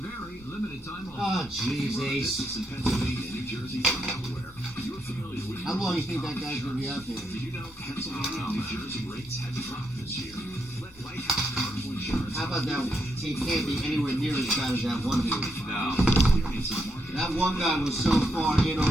Limited time only. Oh, jeez, Ace. Pennsylvania, New Jersey, and Delaware. You're familiar with How long do you think that guy's going to be out there? Did you know Pennsylvania and New Jersey rates have dropped this year? Let Lighthouse Commercial Insurance. How about that one? He can't be anywhere near as bad as that one dude. No. Experience the market That one guy was so far in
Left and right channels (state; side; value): normal; both; correlation 0.79